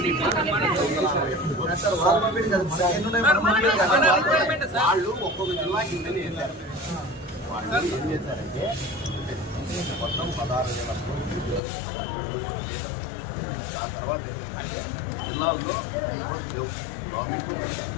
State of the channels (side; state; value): right; drops out; at 11.6 s